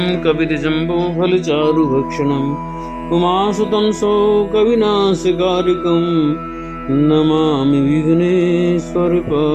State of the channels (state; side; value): identical; both; correlation 1.00